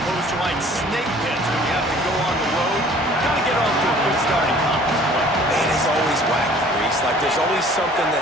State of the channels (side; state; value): both; normal; correlation 0.52